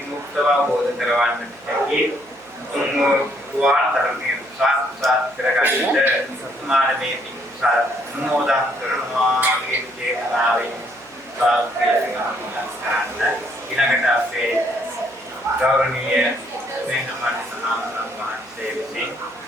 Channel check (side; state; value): right; noise; hum, 29 dB below the sound